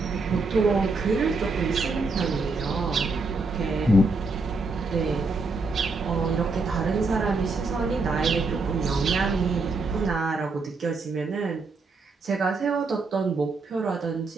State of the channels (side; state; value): left; quieter; 3.7 dB